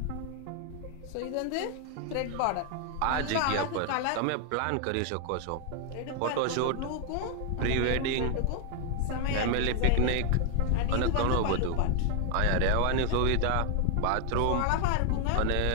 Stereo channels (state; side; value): different; both; correlation 0.00